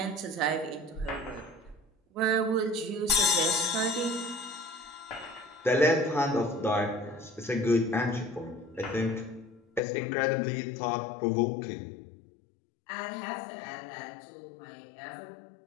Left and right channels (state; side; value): drops out; right; at 9.8 s